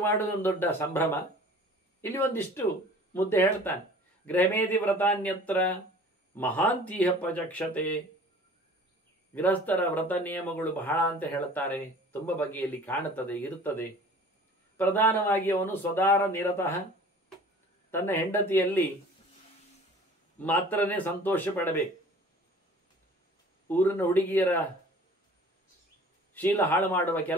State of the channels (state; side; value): normal; both; correlation 0.46